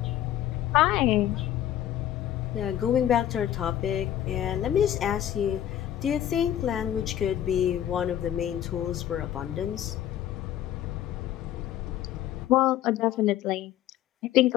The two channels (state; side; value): quieter; right; 11.6 dB